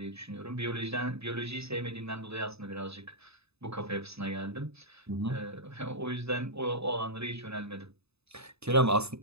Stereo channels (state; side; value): late; left; 0.79 ms